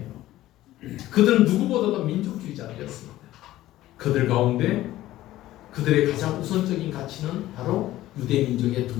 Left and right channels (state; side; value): quieter; right; 15.2 dB